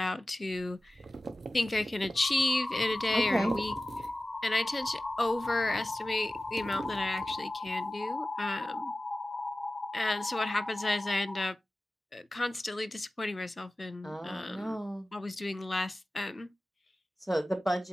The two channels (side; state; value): both; normal; correlation 0.96